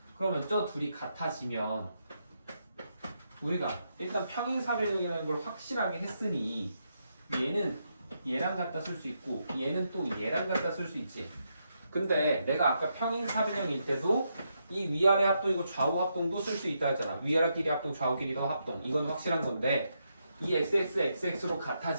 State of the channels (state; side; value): inverted; both; correlation -0.81